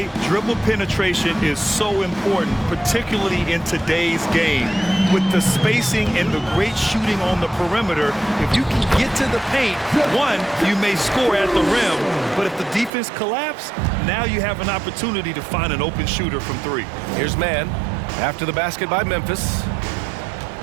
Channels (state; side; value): drops out; left; at 12.9 s